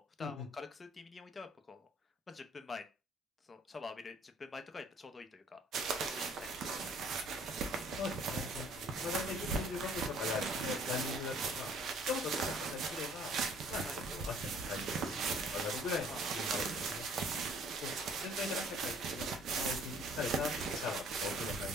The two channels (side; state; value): both; normal; correlation 0.57